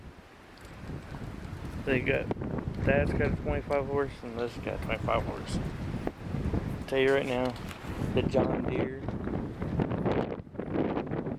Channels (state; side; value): identical; both; correlation 1.00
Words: Dad's got a 25 horse and this got 25 horse. Tell you right now, the John Deere,